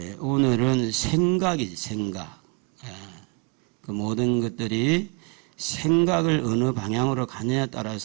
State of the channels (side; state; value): left; quieter; 31.9 dB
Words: 오늘은 생각이지, 생각. 그 모든 것들이 생각을 어느 방향으로 가느냐에